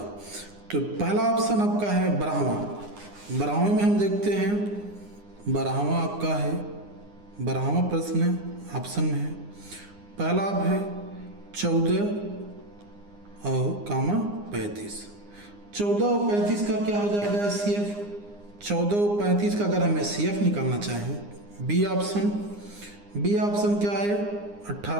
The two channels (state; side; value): late; left; 9.8 ms